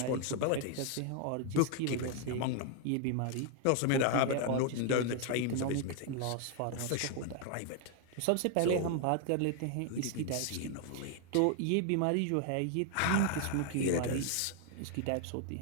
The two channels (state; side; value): different; both; correlation 0.00